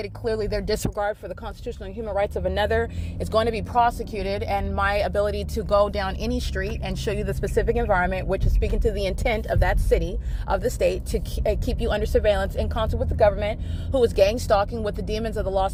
clearly their disregard for the constitutional and human rights of another, is going to be prosecuted. And my ability to go down any street and show you the specific environment, which is speaking to the intent of that city, of the state, to keep you under surveillance in concert with the government, who is gang stalking with the demons of the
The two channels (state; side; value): identical; both; correlation 1.00